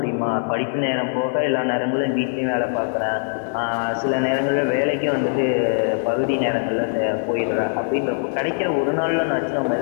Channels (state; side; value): silent; right; 64 dB below the other